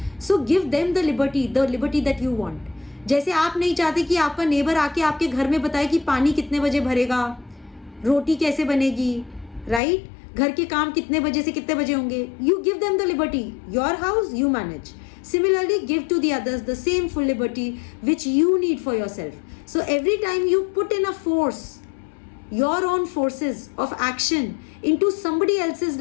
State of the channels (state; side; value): drops out; right; at 9.8 s